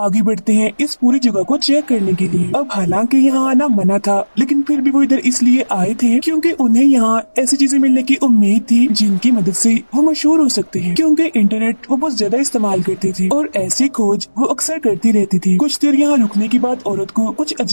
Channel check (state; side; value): inverted; both; correlation -1.00